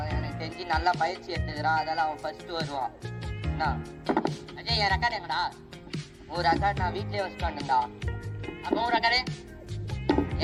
எனக்கு தெரிஞ்சு நல்லா பயிற்சி எடுத்துக்கிறான். அதெல்லாம் அவன் ஃபர்ஸ்ட் வருவான். என்ன அஜய், என் ரெக்கார்டு எங்கடா? ஒரு ரெக்கார்டு நான் வீட்லயே வச்சுட்டு வந்துட்டா. அப்போ ஒரு ரெக்கார்டு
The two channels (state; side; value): identical; both; correlation 1.00